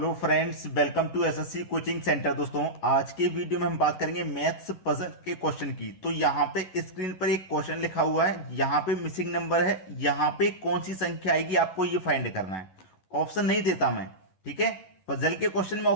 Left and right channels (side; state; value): right; late; 11 ms